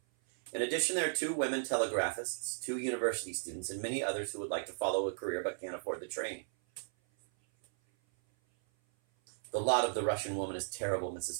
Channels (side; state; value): left; silent; 54 dB below the other